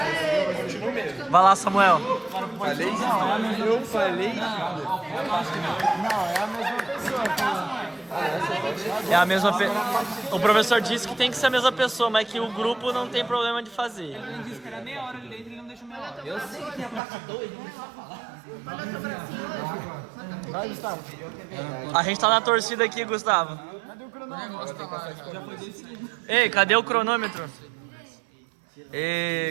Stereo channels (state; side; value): drops out; left; at 17.0 s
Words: Continua mesmo. Vai lá, Samuel. Falei? Eu falei? Não, é a mesma pessoa. É a mesma O professor disse que tem que ser a mesma pessoa, mas que o grupo não tem problema de fazer. Ele disse que era meia hora ali dentro e ele não deixou meia hora. Eu sei que a parte 2 não precisa falar. Olha o teu bracinho hoje. Vai, Gustavo. A gente tá na torcida aqui, Gustavo. Cadê o cronômetro? Já foi decidido. Ei, cadê o cronômetro?